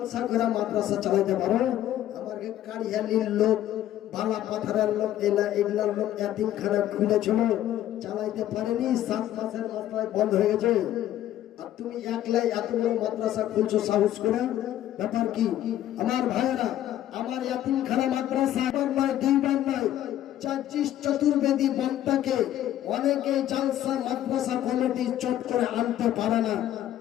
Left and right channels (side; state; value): right; quieter; 12.4 dB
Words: করে মাদ্রাসা চালাইতে পারো? আমার কারিয়ালির লোক, বালা পাথরের লোক, এগুলার লোক এতিমখানা খুলেছিল, চালাইতে পারেনি, 7 মাসের মাত্রায় বন্ধ হয়ে গেছে। আর তুমি একলাই এত বড় মাদ্রাসা খুলছো সাহস করে, ব্যাপার কি? আমার ভাইয়েরা, আমার এতিমখানা মাদ্রাসা একবার নয়, 2বার নয়, 24 চতুর্বেদী বক্তাকে অনেকে জালসা মাদ্রাসা কমিটি চট করে আনতে পারে না,